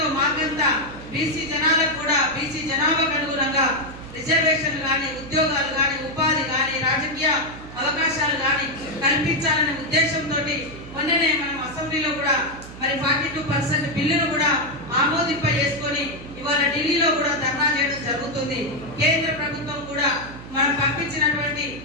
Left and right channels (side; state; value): right; noise; hum, 15 dB below the sound